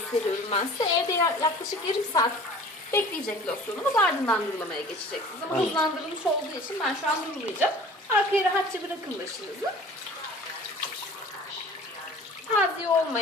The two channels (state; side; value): normal; both; correlation 0.44